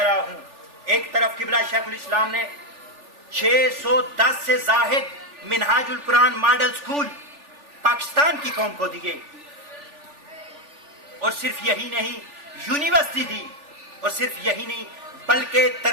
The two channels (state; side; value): late; left; 3.4 ms